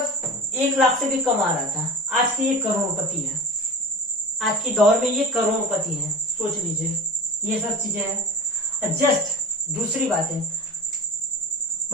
1 लाख से भी कम आ रहा था। आज की ये करोड़पति है, आज की दौर में ये करोड़पति है, सोच लीजिए। ये सब चीजें हैं। जस्ट दूसरी बातें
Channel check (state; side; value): normal; both; correlation 0.31